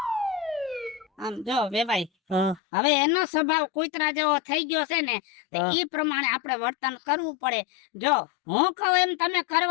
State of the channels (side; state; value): right; drops out; at 2.6 s